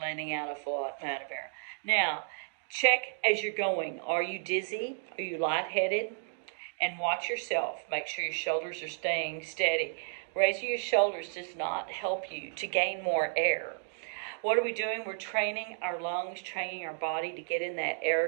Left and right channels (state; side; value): silent; left; digital silence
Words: out a full amount of air. Now, check as you're going. Are you dizzy? Are you lightheaded? And watch yourself. Make sure your shoulders are staying steady. Raising your shoulders does not help you to gain more air. What are we doing? We're training our lungs, training our body to get in that air